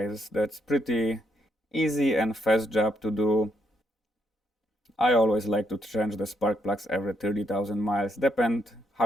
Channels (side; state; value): both; normal; correlation 0.76